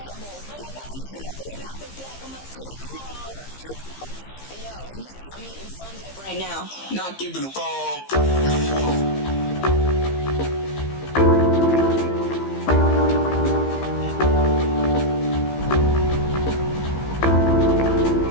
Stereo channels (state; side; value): late; right; 15 ms